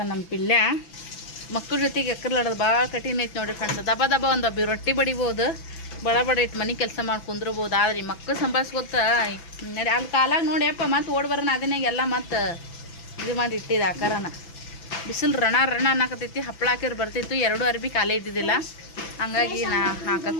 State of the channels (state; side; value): late; right; 6.0 ms